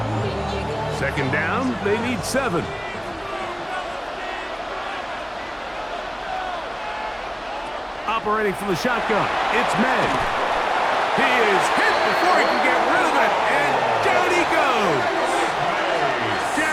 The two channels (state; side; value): identical; both; correlation 1.00